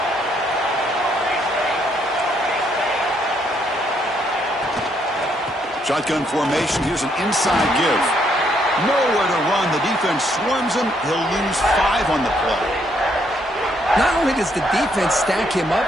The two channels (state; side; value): normal; both; correlation 0.72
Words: Shotgun formation. Here's an inside give. Nowhere to run. The defense swarms him. He'll lose 5 on the play. Not only does the defense stack him up